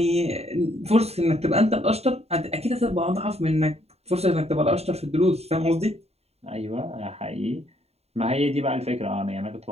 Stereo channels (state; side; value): late; left; 0.30 ms